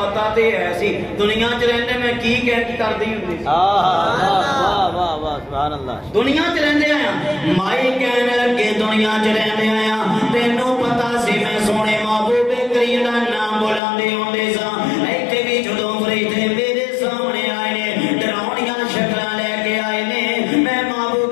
تے ہے سی دنیا وچ رہندے میں کی کردی ہوندی واہ واہ واہ سبحان اللہ دنیا وچ رہندے آیا مائی کہنے لگے دنیا چ رہندے آیا تینوں پتا سی میں سونے محبوب کریم دا نام بلاندے ہوندے سا ایتھے بھی جدوں فرشتے میرے سامنے آئے نے ڈراونیاں شکلاں لے کے آئے نے میں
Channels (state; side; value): drops out; right; at 13.8 s